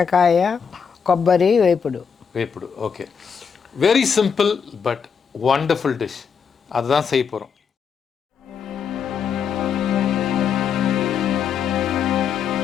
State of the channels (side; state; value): right; quieter; 6.7 dB